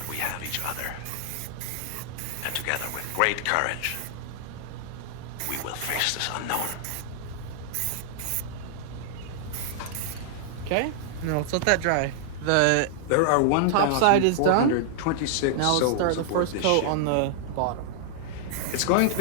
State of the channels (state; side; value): different; both; correlation -0.01